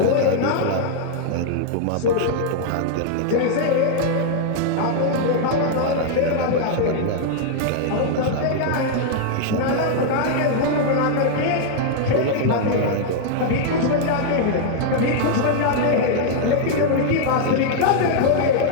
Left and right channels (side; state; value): both; different; correlation -0.01